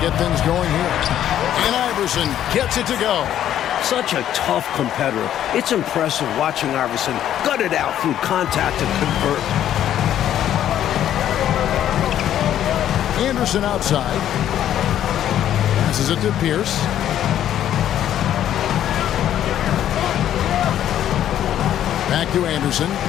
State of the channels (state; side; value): quieter; right; 11.1 dB